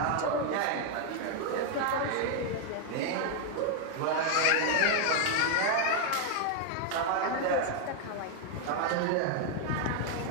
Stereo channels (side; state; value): both; different; correlation 0.00